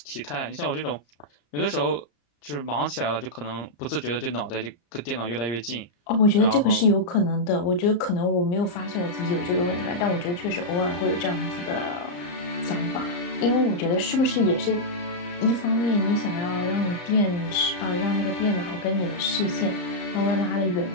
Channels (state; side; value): late; right; 34 ms